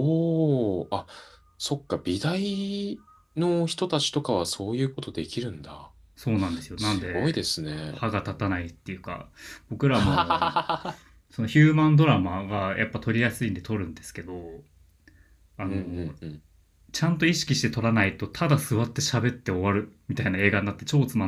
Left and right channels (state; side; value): identical; both; correlation 1.00